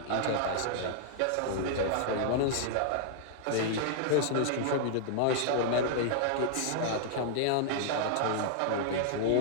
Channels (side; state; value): both; different; correlation -0.01